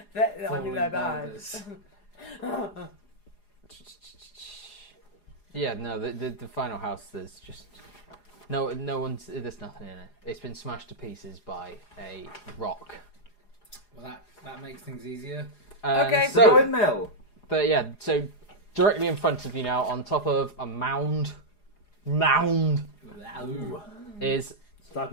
I mean, they're bad. yeah, no, the final house. There's just no one's. There's nothing in it. It's been smashed to pieces by a rock. Well, that makes things easier. Okay, The so windmill. but yeah, so directly in front of you now, on top of a mound, Ooh. is Stop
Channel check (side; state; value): right; late; 4.9 ms